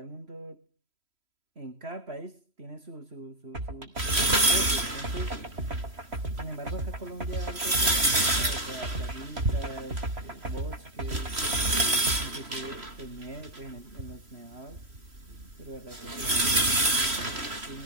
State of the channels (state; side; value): late; left; 3.1 ms